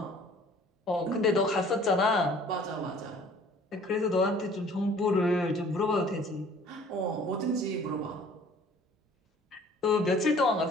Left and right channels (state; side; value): normal; both; correlation 0.52